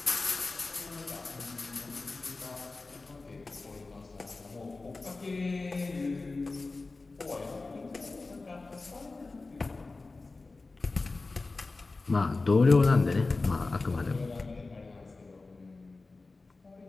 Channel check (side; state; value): right; quieter; 3.6 dB